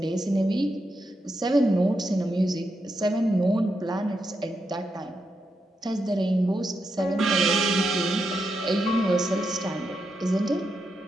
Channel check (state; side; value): normal; both; correlation 0.84